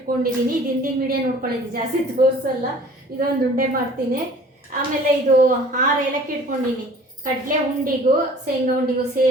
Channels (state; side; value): normal; both; correlation 0.48